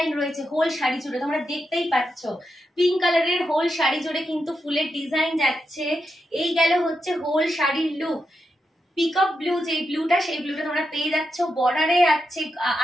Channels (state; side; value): normal; both; correlation 0.86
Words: রয়েছে হোল শাড়ি জুড়ে, তোমরা দেখতেই পাচ্ছ পিঙ্ক কালারের হোল শাড়ি জুড়ে কিন্তু ফুলের ডিজাইন যাচ্ছে। এই গেল হচ্ছে হোল শাড়ির লুক। পিকক ব্লু যে ব্লুটা, সেই ব্লুটা তোমরা পেয়ে যাচ্ছ। বর্ডারে